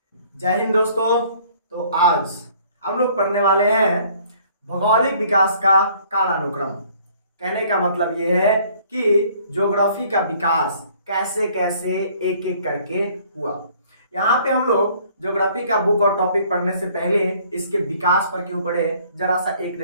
जय हिंद दोस्तों। तो आज हम लोग पढ़ने वाले हैं भौगोलिक विकास का कालानुक्रम। कहने का मतलब ये है कि ज्योग्राफी का विकास कैसे कैसे एक एक करके हुआ। यहाँ पे हम लोग ज्योग्राफी का बुक और टॉपिक पढ़ने से पहले इसके विकास पर क्यों पढ़े, जरा सा एक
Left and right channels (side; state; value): both; inverted; correlation -0.58